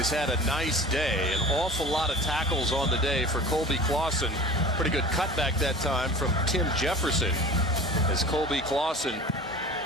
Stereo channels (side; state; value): both; normal; correlation 0.39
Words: had a nice day. An awful lot of tackles on the day for Colby Clausen. Pretty good cutback that time from Tim Jefferson, as Colby Clausen